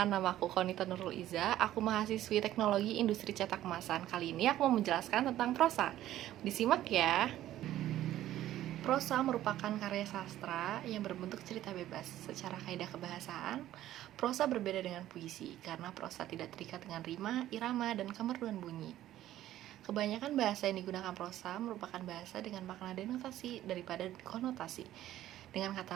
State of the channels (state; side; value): quieter; left; 13.4 dB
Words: nama aku Konita Nurul Iza. Aku mahasiswi Teknologi Industri Cetak Kemasan. Kali ini aku mau menjelaskan tentang prosa. Disimak ya. Prosa merupakan karya sastra yang berbentuk cerita bebas. Secara kaidah kebahasaan, prosa berbeda dengan puisi karena prosa tidak terikat dengan rima, irama, dan kemerduan bunyi. Kebanyakan bahasa yang digunakan prosa merupakan bahasa dengan makna denotasi daripada konotasi. Dengan kata